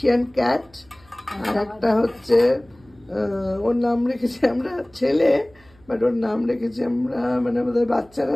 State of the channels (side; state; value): right; noise; hum, 29 dB below the sound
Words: ক্যাট, আর একটা হচ্ছে ওর নাম রেখেছি আমরা ছেলে, বাট ওর নাম রেখেছি আমরা, মানে আমাদের বাচ্চারা